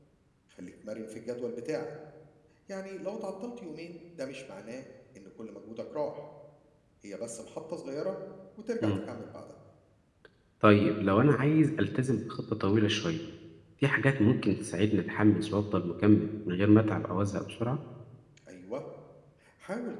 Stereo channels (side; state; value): both; identical; correlation 1.00